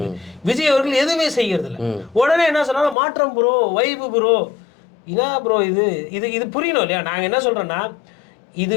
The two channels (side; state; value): right; drops out; at 3.0 s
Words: விஜய் அவர்கள் எதுவுமே செய்யறது இல்ல. உடனே என்ன சொன்னாலும் மாற்றம் ப்ரோ, வைபு ப்ரோ, என்ன ப்ரோ இது இது இது புரியணும் இல்லையா? நாங்க என்ன சொல்றோம்னா, இது